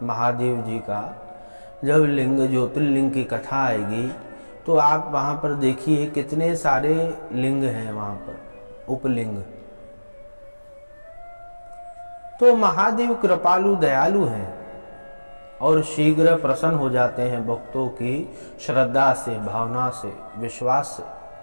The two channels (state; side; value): inverted; both; correlation -1.00